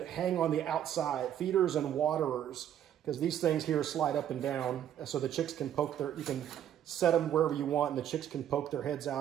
on the outside, feeders and waterers, because these things here slide up and down, so the chicks can you can set them wherever you want, and the chicks can poke their heads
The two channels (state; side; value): quieter; left; 10.5 dB